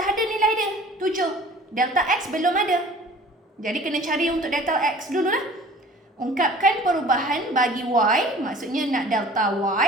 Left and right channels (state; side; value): normal; both; correlation 0.47